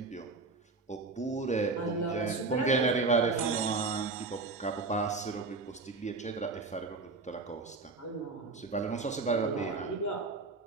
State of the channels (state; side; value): quieter; left; 3.8 dB